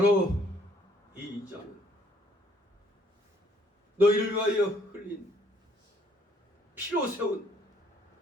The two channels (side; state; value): both; normal; correlation 0.64